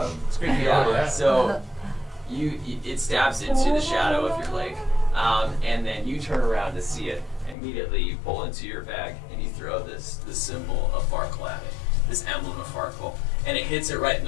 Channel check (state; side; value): drops out; right; at 7.6 s